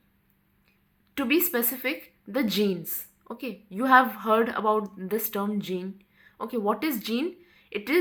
To be specific, the genes. Okay, you have heard about this term gene. Okay, what is gene? It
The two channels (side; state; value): both; identical; correlation 1.00